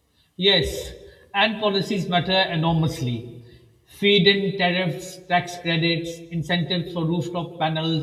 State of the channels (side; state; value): both; identical; correlation 1.00